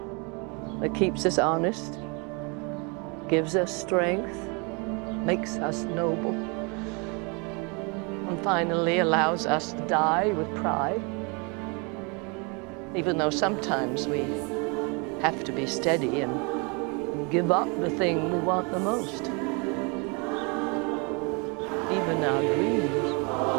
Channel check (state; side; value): quieter; left; 31.9 dB